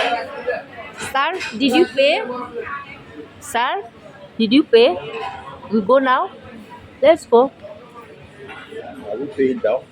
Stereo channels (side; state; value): both; identical; correlation 1.00